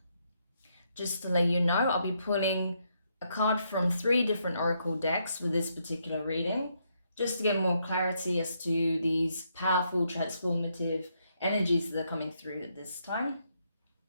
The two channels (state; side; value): inverted; both; correlation -0.77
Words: Just to let you know, I'll be pulling a card from 3 different oracle decks with this particular reading, just to get more clarity as to these powerful, transformative energies that are coming through at this time.